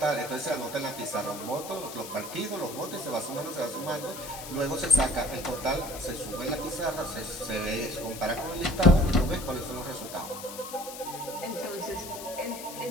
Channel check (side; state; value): left; noise; hiss, 11 dB below the sound